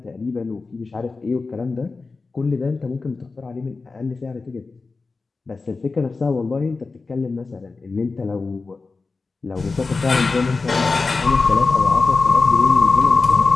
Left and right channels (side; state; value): right; quieter; 4.0 dB